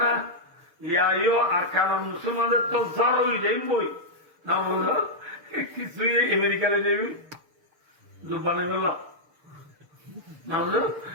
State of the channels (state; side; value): late; left; 6.6 ms